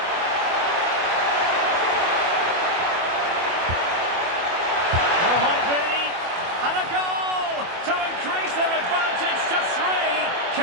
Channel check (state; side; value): late; left; 24 ms